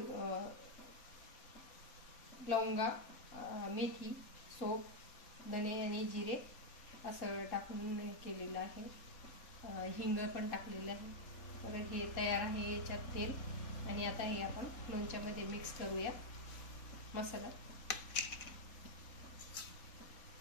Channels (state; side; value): late; right; 3.8 ms